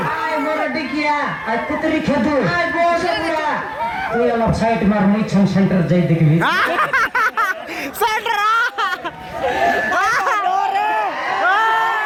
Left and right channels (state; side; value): identical; both; correlation 1.00